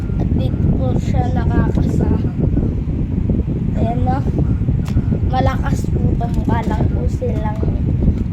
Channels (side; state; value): both; identical; correlation 1.00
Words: At dito po siya nakakasa. Ayan no. Malakas po to. Mukha lang po silang